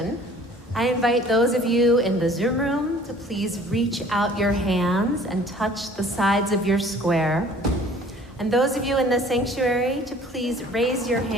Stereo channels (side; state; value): both; normal; correlation 0.51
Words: I invite those of you in the Zoom room to please reach out your hands and touch the sides of your square. And those of you in the sanctuary to please raise your